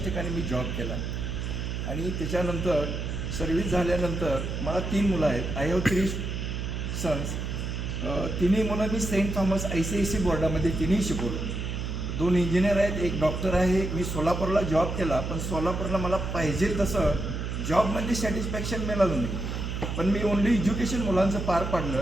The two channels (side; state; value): right; noise; hum, 4 dB below the sound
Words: ठिकाणी मी जॉब केला आणि त्याच्यानंतर सर्व्हिस झाल्यानंतर मला 3 मुलं आहेत. I have 3 sons. तिन्ही मुलं मी सेंट थॉमस ICSE बोर्डामध्ये तिन्ही शिकवलो. 2 इंजिनियर आहेत, एक डॉक्टर आहे. मी सोलापूरला जॉब केला, पण सोलापूरला मला पाहिजे तसं जॉबमध्ये सॅटिस्फॅक्शन मिळालं नाही. पण मी ओनली एज्युकेशन मुलांचं पार